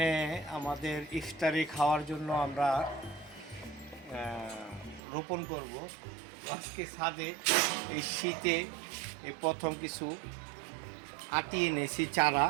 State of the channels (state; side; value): drops out; left; at 5.0 s